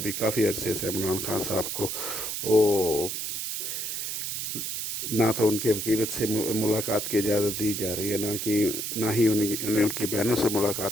काफ़ी अरसे से इमरान खान साहब को वो ना तो उनके वकील से मुलाकात की इजाज़त दी जा रही है, ना ही उन्हें उनकी बहनों से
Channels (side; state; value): right; noise; hiss, 3 dB below the sound